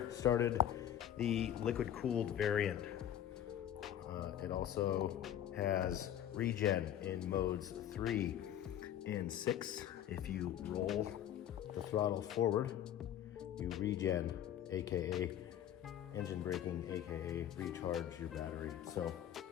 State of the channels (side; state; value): right; quieter; 10.7 dB